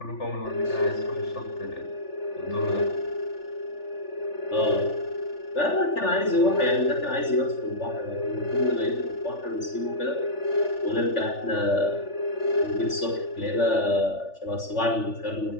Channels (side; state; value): right; late; 3.4 ms